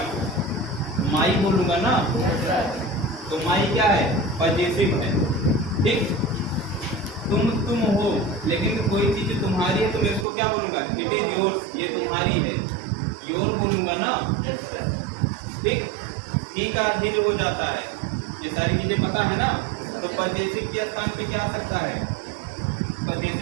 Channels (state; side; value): drops out; left; at 10.2 s